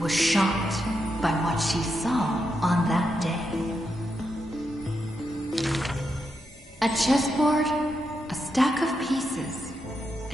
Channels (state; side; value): normal; both; correlation 0.84